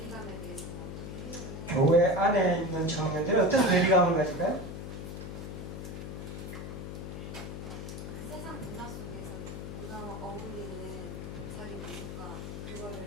대해서는 어떻게 해결을 해요? 교회 안에 있는 청년들이 어떤 괴리감을 가질까요? 세상 문화 속에서 문화와 어울리는 자기 모습과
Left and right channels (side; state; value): left; noise; hum, 7 dB below the sound